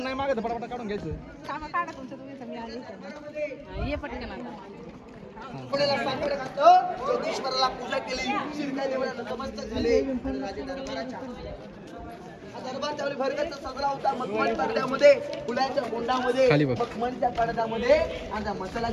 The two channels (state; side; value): identical; both; correlation 1.00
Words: मागत पटापट काढून घ्यायचं. कामा काढा तुमचं तुम्ही सगळी आली इथं. ये पटकन आता. योगेश्वराला पूजा केली, शिरक्या देवाला नतमस्तक झाले. दरबार त्यावेळी भरगच्च सजला होता. मखमल पडद्यामध्ये, फुलाच्या गोंडामध्ये, खाली बघ. मखमलच्या पडद्यामध्ये आणि त्या